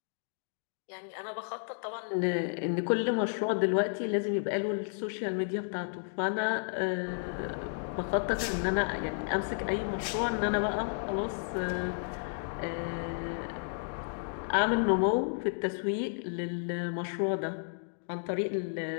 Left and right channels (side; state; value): right; silent; digital silence